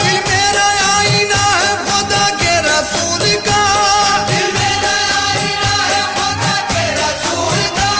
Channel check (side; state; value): both; identical; correlation 1.00